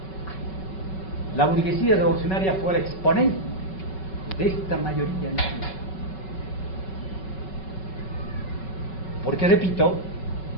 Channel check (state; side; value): late; right; 5.3 ms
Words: La burguesía revolucionaria fue el exponente de esta mayoría nacional. Porque, repito,